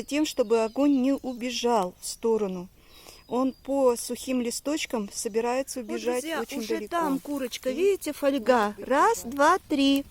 тем, чтобы огонь не убежал в сторону. Он по сухим листочкам собирается убежать очень уже далеко. там курочка, видите, фольга. Раз, два, три.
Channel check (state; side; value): identical; both; correlation 1.00